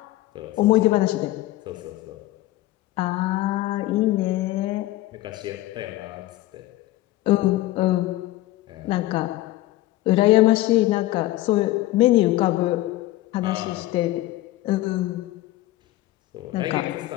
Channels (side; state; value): right; quieter; 16.6 dB